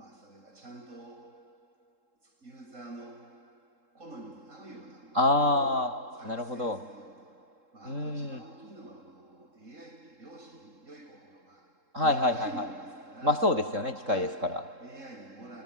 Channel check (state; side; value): late; left; 3.7 ms